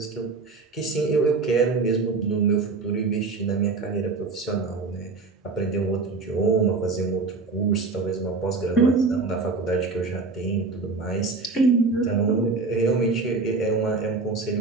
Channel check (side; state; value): left; quieter; 4.1 dB